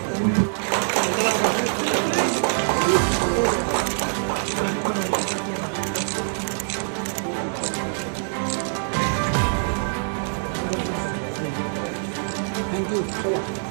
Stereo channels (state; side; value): silent; left; digital silence